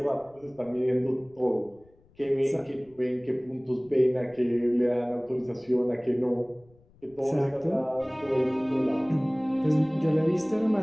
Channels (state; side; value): noise; left; rumble, 30 dB below the sound